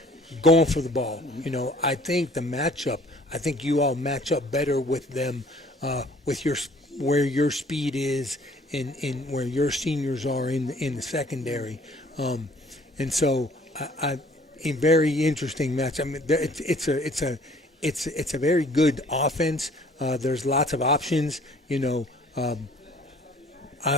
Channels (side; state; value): both; normal; correlation 0.55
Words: for the ball. You know, I think the matchup. I think you all match up better with them, with where your speed is. In where your seniors are in the secondary, and so a very interesting match. I mean, it's a very good offense. There's lots of options. You know,